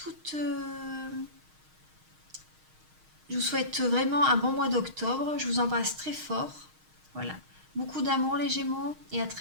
je vous souhaite vraiment un bon mois d'octobre. Je vous embrasse très fort. Voilà. Beaucoup d'amour les Gémeaux et à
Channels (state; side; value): late; left; 6.4 ms